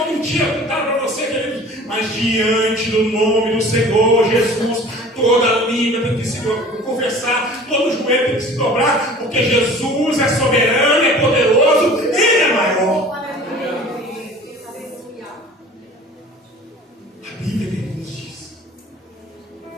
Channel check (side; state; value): both; normal; correlation 0.45